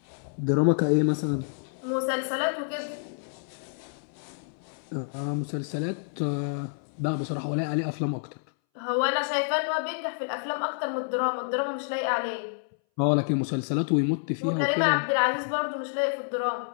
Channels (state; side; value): silent; right; 59 dB below the other